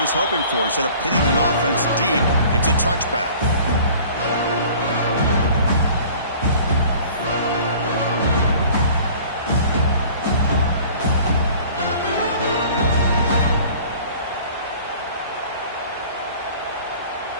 hoping for. Instead of pitting the offense deep, it's a touchback.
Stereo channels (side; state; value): both; inverted; correlation -0.48